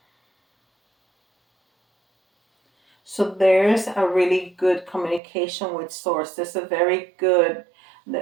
so there's a really good communication with source. There's a very good,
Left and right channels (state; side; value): drops out; left; at 5.2 s